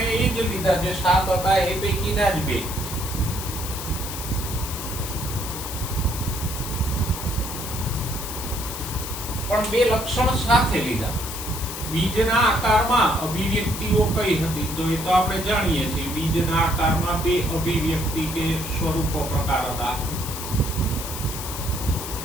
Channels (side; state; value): left; noise; hiss, 8 dB below the sound